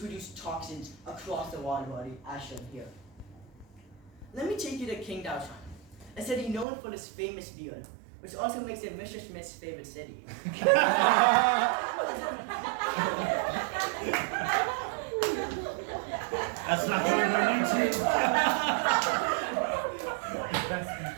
toxins across the water body, as shown here. Let me take you to Qingdao, China, a city known for its famous beer, which also makes it Mr. Schmidt's favorite city. That's not going on YouTube.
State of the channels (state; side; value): drops out; left; at 6.7 s